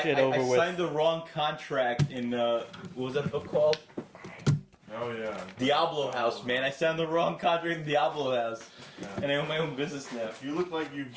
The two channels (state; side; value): identical; both; correlation 1.00